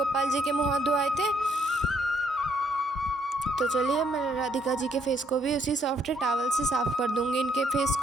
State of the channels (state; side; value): normal; both; correlation 0.70